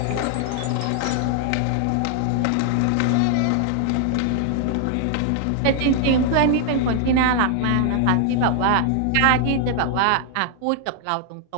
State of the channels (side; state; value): both; different; correlation 0.00